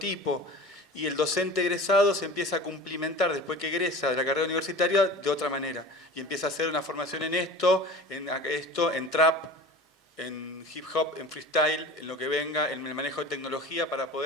Y el docente egresado se empieza a cumplimentar después que egresa de la carrera universitaria de otra manera. Y empieza a hacer una formación en esto, en trap, en hip hop, en freestyle, en lo que venga, en el manejo de tecnología, para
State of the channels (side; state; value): both; normal; correlation 0.37